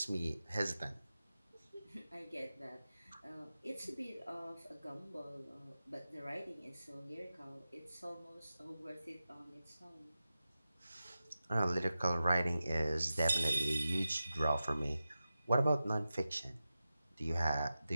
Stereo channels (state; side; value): inverted; both; correlation -0.93